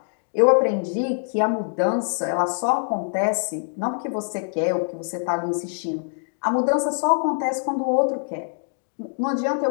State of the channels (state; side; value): silent; right; digital silence